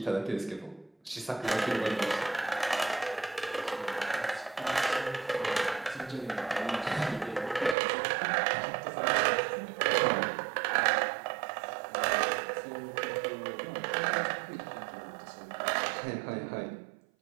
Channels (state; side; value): drops out; left; at 7.8 s